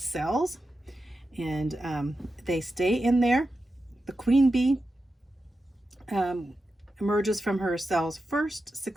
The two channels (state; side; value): normal; both; correlation 0.90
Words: and they stay in there. The queen bee emerges from her cells first,